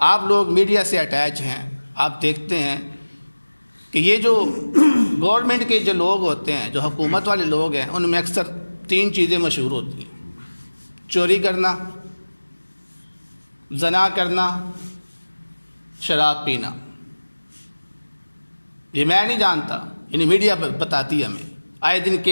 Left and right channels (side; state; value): both; inverted; correlation -1.00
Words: آپ لوگ میڈیا سے اٹیچ ہیں، آپ دیکھتے ہیں کہ یہ جو گورنمنٹ کے جو لوگ ہوتے ہیں، جو حکومت والے لوگ ہیں، ان میں اکثر 3 چیزیں مشہور ہوتی ہیں: چوری کرنا، زنا کرنا، شراب پینا۔ یہ میں نہیں جانتا، یعنی میڈیا بتاتی ہے ہمیں، آئے دن